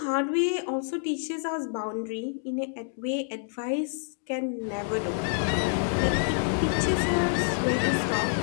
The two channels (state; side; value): silent; right; 60 dB below the other